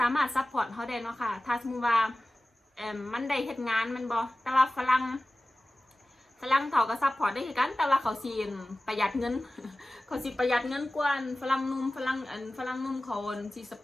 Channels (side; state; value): both; normal; correlation 0.96